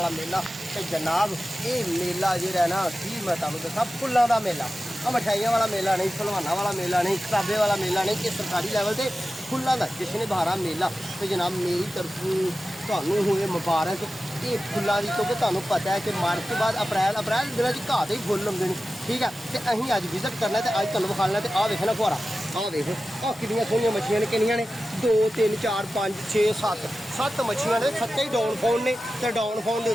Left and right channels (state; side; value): normal; both; correlation 0.94